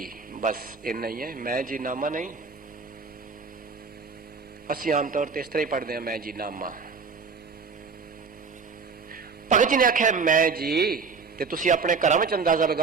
बस इन्ना ही है, मैं जी नामा नहीं। असी आमतौर पर इस तरह ही पढ़ते हैं मैं जी नामा। भगत जी ने आख्या मैं जी, ते तुसी अपने घरों में अंदाजा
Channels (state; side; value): quieter; left; 5.0 dB